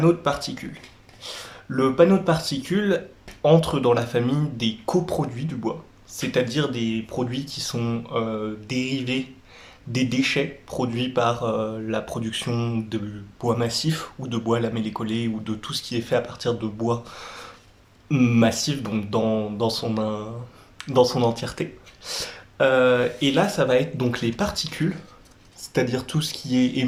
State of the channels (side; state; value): both; identical; correlation 1.00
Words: de particules. Le panneau de particules entre dans la famille des coproduits du bois, c'est-à-dire des produits qui sont dérivés des déchets produits par la production de bois massif ou de bois lamellé collé ou de tout ce qui est fait à partir de bois massif, donc dans son entièreté. Et là, ça va être donc les particules, c'est-à-dire tout ce qui est